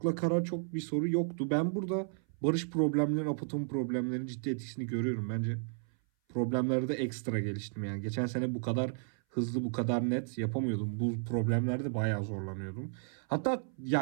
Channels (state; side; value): silent; left; 56 dB below the other